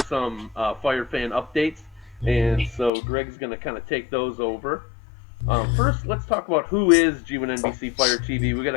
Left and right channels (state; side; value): drops out; right; at 2.9 s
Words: Fire fan updates. And so Greg's going to kind of take those over. First, let's talk about who is G1NBC Fire TV. We got